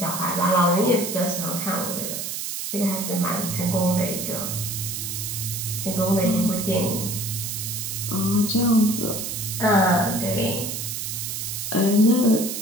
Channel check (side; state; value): right; noise; hiss, 4 dB below the sound